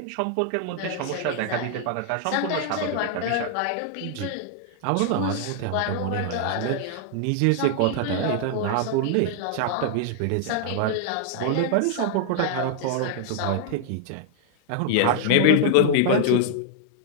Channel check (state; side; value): different; both; correlation -0.01